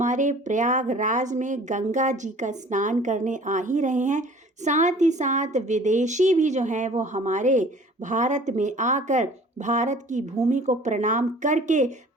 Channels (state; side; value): normal; both; correlation 0.48